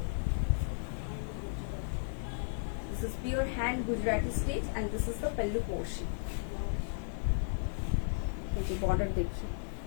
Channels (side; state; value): right; silent; digital silence